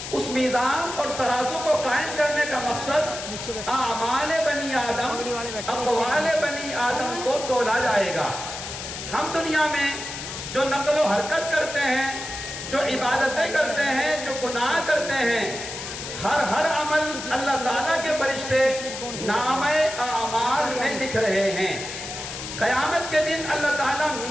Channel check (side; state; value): left; noise; hiss, 8 dB below the sound